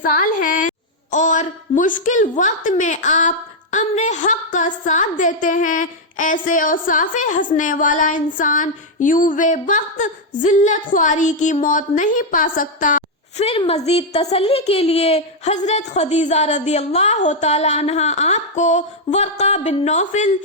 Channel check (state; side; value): normal; both; correlation -0.01